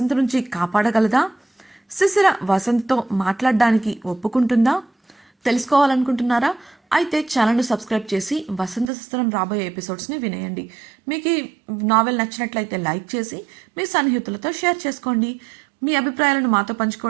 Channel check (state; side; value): drops out; left; at 8.9 s